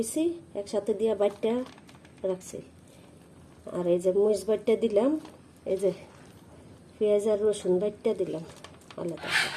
একসাথে দিয়া বাইটটা রাখছি। আর এই যে মরিচ বাইটটা দিলাম, এই যে পেঁয়াজ আর রসুন বাইটটা দিলাম আলাদা।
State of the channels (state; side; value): identical; both; correlation 1.00